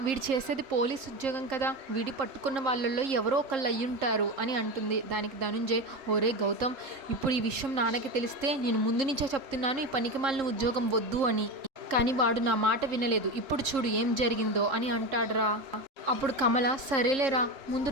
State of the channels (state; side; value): late; left; 3.7 ms